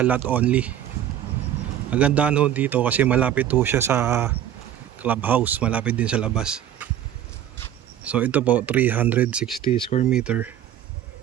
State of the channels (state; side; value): quieter; left; 10.9 dB